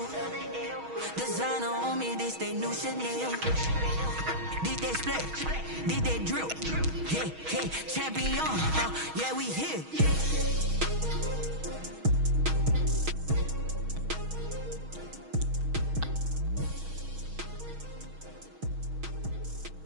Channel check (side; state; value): left; late; 6.3 ms